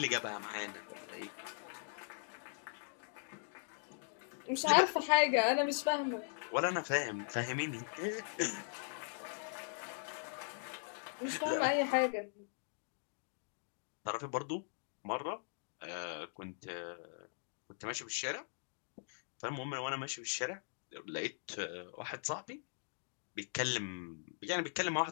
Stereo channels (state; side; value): silent; right; digital silence